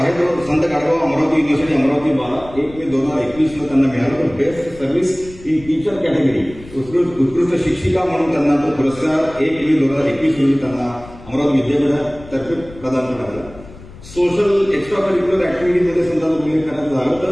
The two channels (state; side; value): noise; left; rumble, 18 dB below the sound